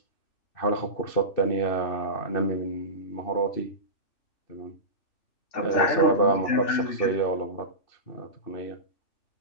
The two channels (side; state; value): right; late; 2.6 ms